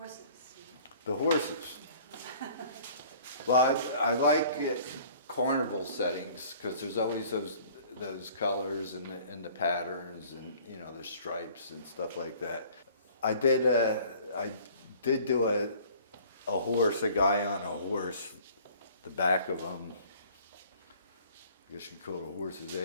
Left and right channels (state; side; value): inverted; both; correlation -0.52